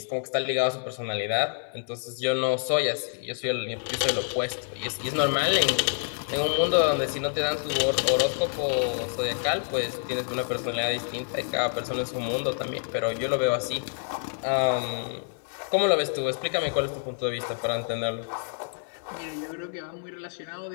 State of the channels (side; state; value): right; silent; digital silence